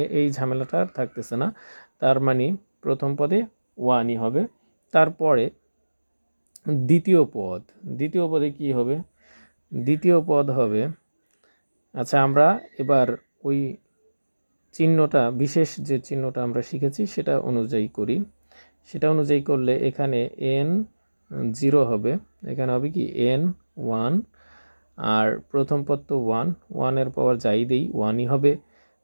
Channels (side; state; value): both; inverted; correlation -1.00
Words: এই ঝামেলাটা আর থাকতেছে না। তার মানে প্রথম পদে 1ই হবে। তারপরে দ্বিতীয় পদে কি হবে? দ্বিতীয় পদ হবে, আচ্ছা, আমরা এবার ওই চিহ্নটা, বিশেষ যে চিহ্নটা আমরা শিখেছি সেটা অনুযায়ী করি। সেটা অনুযায়ী করলে এখানে n 0 হবে, এখানে হবে কি n 1, আর প্রথম পদ তো 1 এর পাওয়ার যাই দেই 1ই হবে।